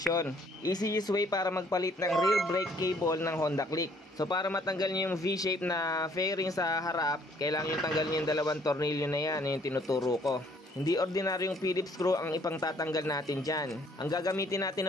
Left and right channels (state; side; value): normal; both; correlation 0.62